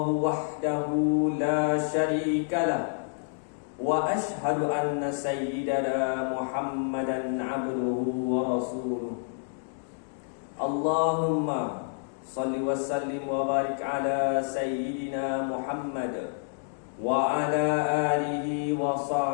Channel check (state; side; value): silent; right; digital silence